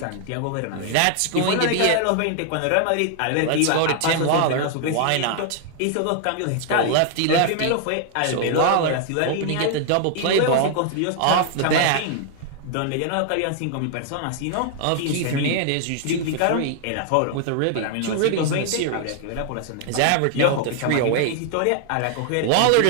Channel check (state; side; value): different; both; correlation 0.00